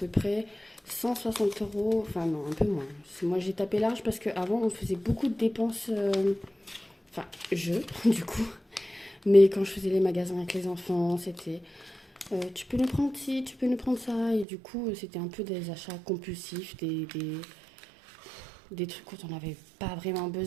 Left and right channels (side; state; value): left; drops out; at 14.5 s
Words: près 160 euros. Enfin, non, un peu moins. Moi, j'ai tapé large parce qu'avant, on faisait beaucoup de dépenses. Enfin, du coup. Mais quand je faisais les magasins avec les enfants, c'était tu peux nous prendre ci, tu peux nous prendre ça. Et du coup, c'était un peu des achats compulsifs, des trucs dont on n'avait pas vraiment